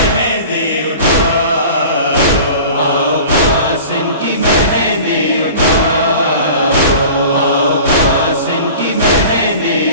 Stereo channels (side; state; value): both; inverted; correlation -0.41